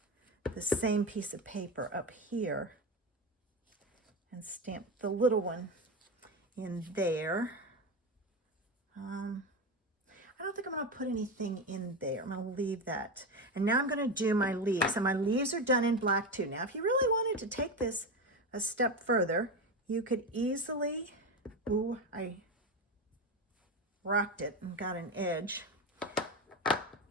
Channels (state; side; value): normal; both; correlation 0.18